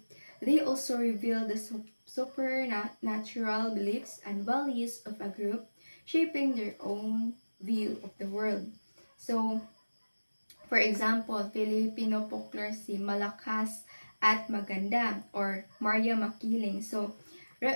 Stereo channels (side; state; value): both; inverted; correlation -1.00